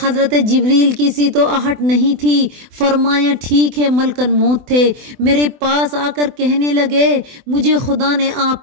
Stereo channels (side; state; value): left; late; 24 ms